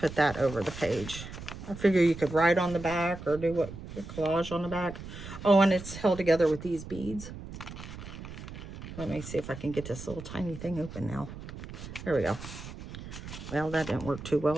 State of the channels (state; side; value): noise; right; rumble, 12 dB below the sound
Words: that over the page. I figure you could write on the back or do a collage on the back. Oh, and it's held together with these beads. Let me see if I can get this little tiny thing open now. There we go. Well, that didn't work too well,